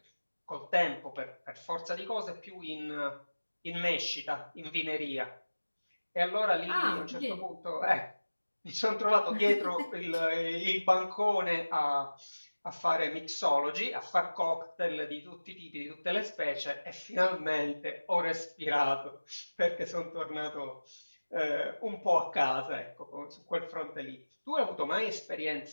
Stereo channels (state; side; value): inverted; both; correlation -1.00